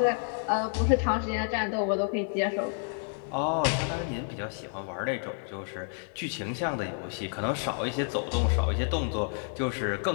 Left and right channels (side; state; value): right; silent; 58 dB below the other